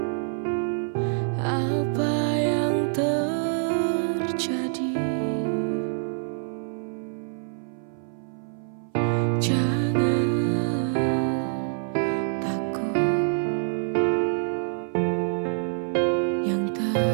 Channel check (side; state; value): left; silent; 57 dB below the other